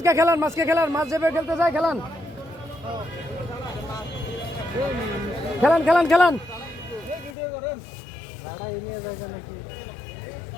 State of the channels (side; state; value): right; drops out; at 7.4 s